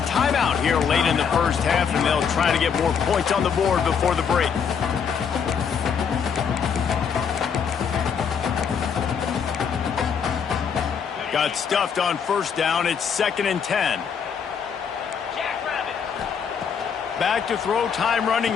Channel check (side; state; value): right; quieter; 6.9 dB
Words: timeout here late in the first half, and they'll try to get more points on the board before the break. Got stuffed on first down. It's 2nd and 10. Back to throw, time running